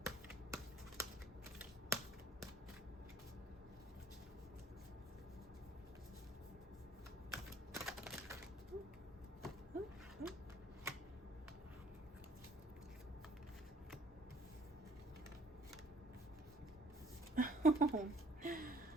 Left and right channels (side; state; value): both; normal; correlation 0.58